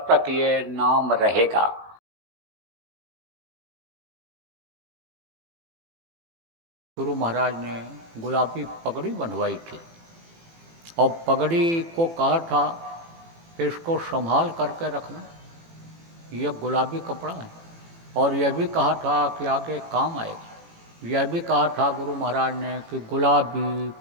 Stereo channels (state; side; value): late; left; 18 ms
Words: तक ये नाम रहेगा। गुरु महाराज ने गुलाबी पगड़ी बनवाई थी और पगड़ी को कहा था कि इसको संभाल करके रखना, यह गुलाबी कपड़ा है। और यह भी कहा था कि आगे काम आएगा। यह भी कहा था गुरु महाराज ने कि गुलाबी